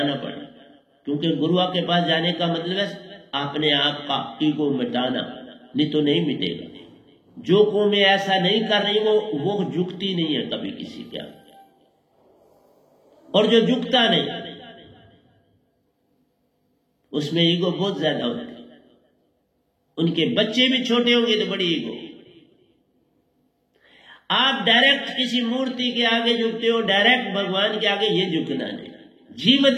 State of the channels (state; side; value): identical; both; correlation 1.00